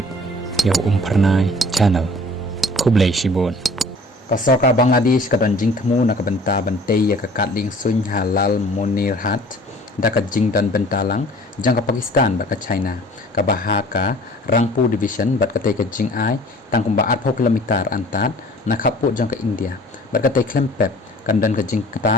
yo pernai channel kublai shibun kasoka Bangladesh kadon jing temu nak benta bentei ya kakat ling sun halal monir hat daka jing dan bentalang jang ka Pakistan bat ka China ka bahaka rangpu division bat ka te ka jing ai tang kumba 8 kilometer antat nakhapu jang ka India bat ka te klempep kan dan ka jing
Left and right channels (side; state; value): both; normal; correlation 0.49